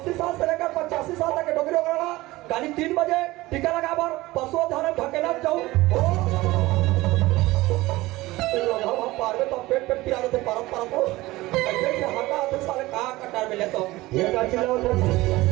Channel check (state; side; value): quieter; left; 19.0 dB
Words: साल से लेकर 85 साल तक के डोगरी वगैरह गाड़ी 3 बजे टीका लगा बार पशु धारण ढकेला जाओ हम पार में तो पेट पिला देते परत को ऐसे से हटा तो साले कहां कटार में ले तो ये का चिल्लाओ